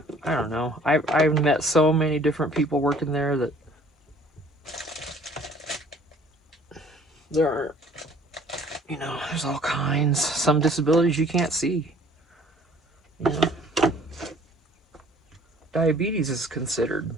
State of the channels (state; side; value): normal; both; correlation 0.55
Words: I don't know. I've met so many different people working there that there are, there's all kinds. Some disabilities you can't see. You know, diabetes is considered,